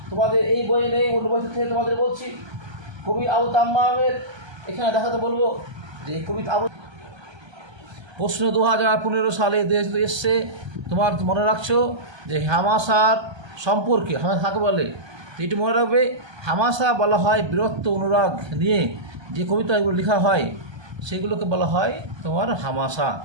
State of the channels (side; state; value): left; late; 1.3 ms